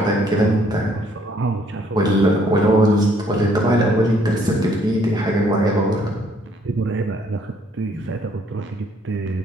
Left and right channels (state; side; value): normal; both; correlation 0.65